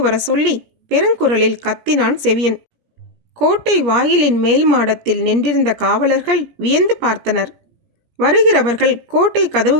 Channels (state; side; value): late; left; 17 ms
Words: வர சொல்லி பெருங்குரலில் கத்தினான் செவியன். கோட்டை வாயிலின் மேல் மாடத்தில் நின்றிருந்த காவலர்கள் வியந்து பார்த்தனர். வருகிறவர்கள் கோட்டை